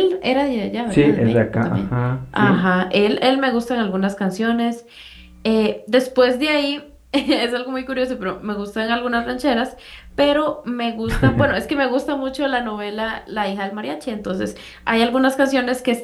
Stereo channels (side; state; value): both; identical; correlation 1.00